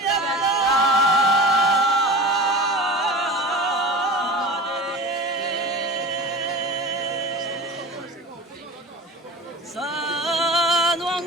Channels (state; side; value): normal; both; correlation 0.35